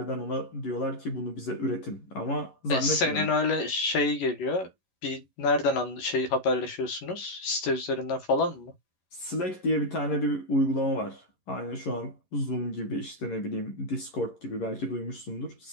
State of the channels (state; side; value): late; right; 11 ms